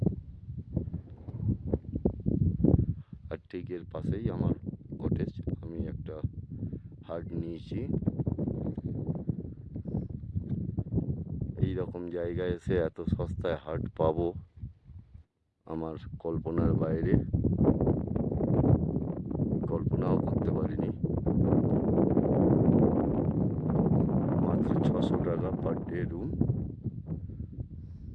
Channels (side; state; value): both; identical; correlation 1.00